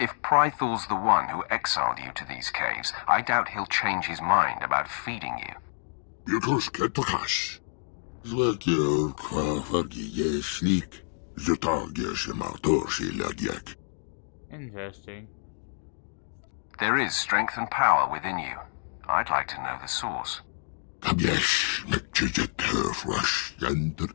Prythor's the one who exiled you to these caves, I doubt he'll change his mind about feeding you. Yutus ketakash. Zwekir kwafargi yeslik. Lagiak. Interesting. There is strength and power within you. I'd like to know the source. Kabjesh mekchijet herfrash yanter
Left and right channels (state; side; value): silent; right; digital silence